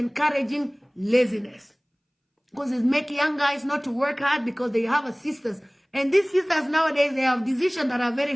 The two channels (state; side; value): identical; both; correlation 1.00